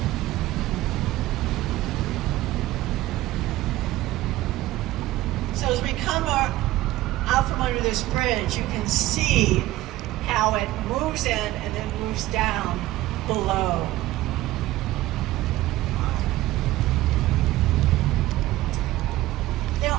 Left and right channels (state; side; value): quieter; left; 16.5 dB